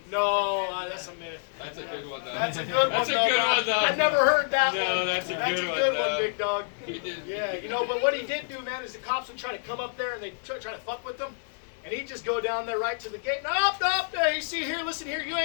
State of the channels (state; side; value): silent; right; 59 dB below the other